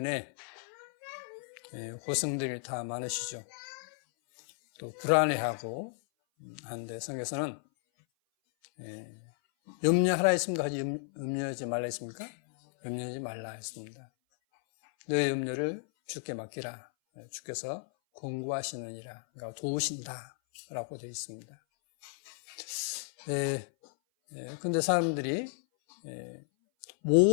고생들이 다 많으시죠. 또 불안해하고 하는데 성경에서는 염려하라 했습니까? 염려하지 말라 했습니까? 염려하지 말라 했습니다. 너의 염려를 주께 맡기라. 주께서 공부하시느니라. 그러니까 도우신다 라고 되어 있습니다. 근데 사람들이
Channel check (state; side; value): silent; right; 55 dB below the other